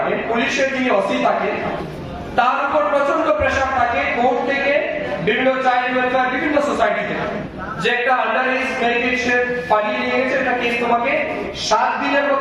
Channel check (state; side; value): identical; both; correlation 1.00